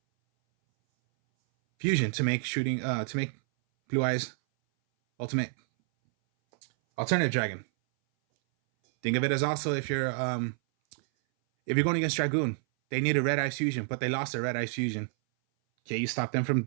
fusion to make blue eyes ultimate alternative dragon. Think of it as also if you're going against Dragoon, they need a red eyes fusion, but they lost their red eyes fusion. Okay, you stop them from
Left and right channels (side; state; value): left; silent; 59 dB below the other